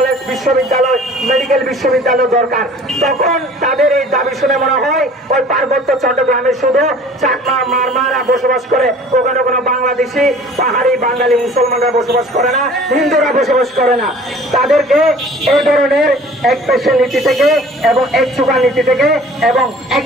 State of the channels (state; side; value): normal; both; correlation 0.48